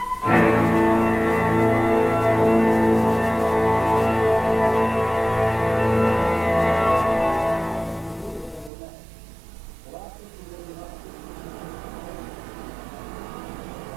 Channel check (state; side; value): drops out; left; at 8.7 s